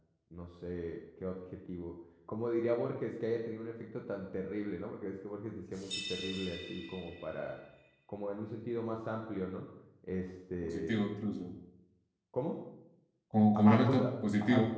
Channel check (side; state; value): both; identical; correlation 1.00